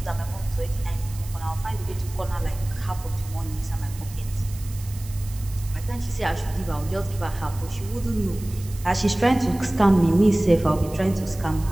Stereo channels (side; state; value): right; noise; hiss, 18 dB below the sound